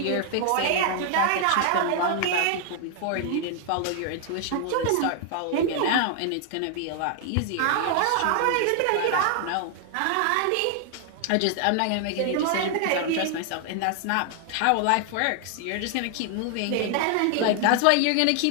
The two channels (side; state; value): both; different; correlation 0.00